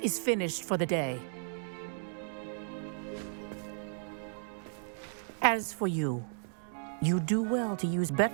finished for the day. As for you, you do well to use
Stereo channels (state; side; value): silent; left; digital silence